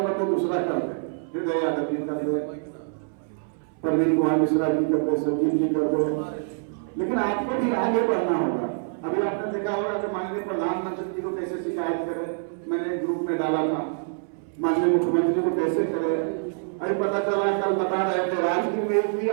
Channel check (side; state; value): left; silent; 60 dB below the other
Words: बदले दूसरा कर दे, हृदय यादव जी कर दो, प्रवीण कुमार मिश्रा जी कर दो, संजीव जी कर दो, लेकिन आपको भी आगे बढ़ना होगा। अभी आपने देखा होगा कि माननीय प्रधानमंत्री जी को कैसे शिकायत करे, मैंने ग्रुप में डाला था, माननीय मुख्यमंत्री को कैसे करे। अभी पता चला, कल बता रहे थे राजगीर में भी